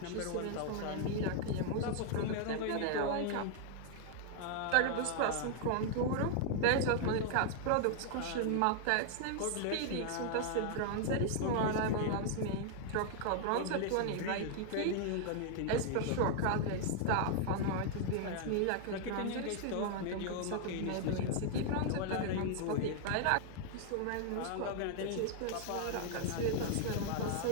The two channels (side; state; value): both; different; correlation 0.00